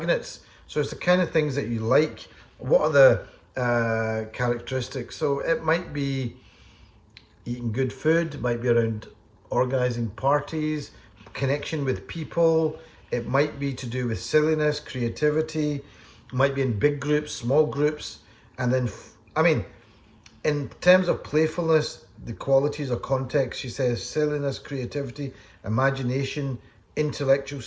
So it's the kind of things that you like. What are the characteristics? So it might be eating good food, it might be around organizing parties, connection with people, it might be to do with silliness, creativity, it might be in big groups, small groups, and then, I mean, in terms of playfulness, the qualities or context, she says silliness, creativity, imagination, intellectual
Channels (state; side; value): identical; both; correlation 1.00